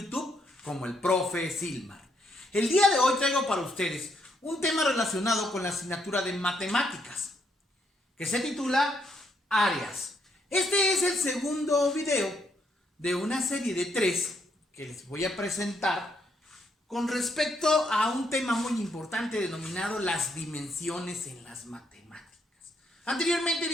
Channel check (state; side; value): normal; both; correlation 0.75